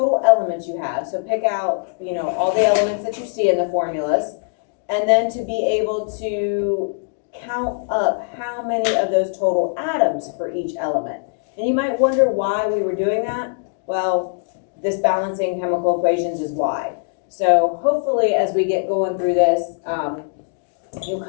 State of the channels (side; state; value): right; silent; digital silence